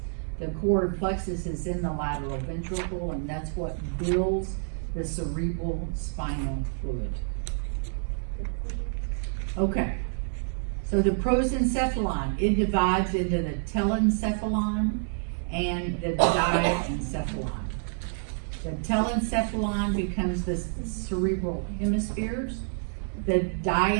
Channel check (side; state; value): left; silent; 59 dB below the other